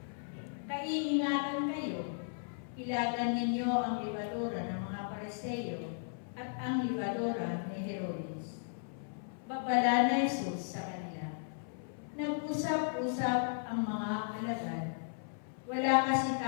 Kaiingatan kayo, ilagan ninyo ang libadura ng mga Pariseo at ang libadura ni Herodes. Babala na Jesus sa kanila. Nag-usap-usap ang mga alagad. Wala kasi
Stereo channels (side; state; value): right; silent; 54 dB below the other